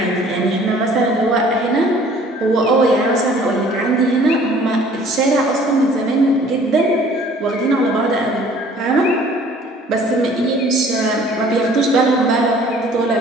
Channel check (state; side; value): normal; both; correlation 0.53